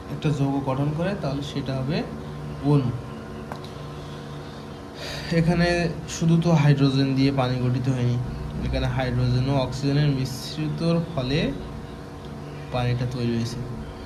একটা যৌগ গঠন করে তাহলে সেটা হবে অণু। এখানে শুধু তো হাইড্রোজেন দিয়ে পানি গঠিত হয়নি, এখানে হাইড্রোজেন ও অক্সিজেনের মিশ্রিতর ফলে পানিটা তৈরি হয়েছে।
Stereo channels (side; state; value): both; identical; correlation 1.00